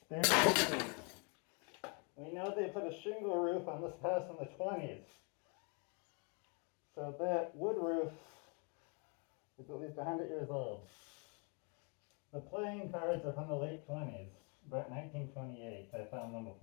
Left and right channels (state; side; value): quieter; right; 36.0 dB